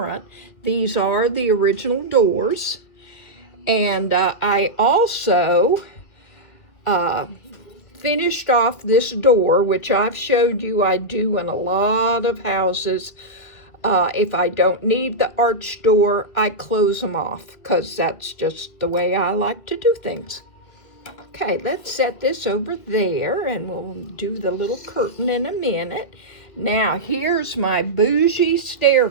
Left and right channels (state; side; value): late; right; 1.9 ms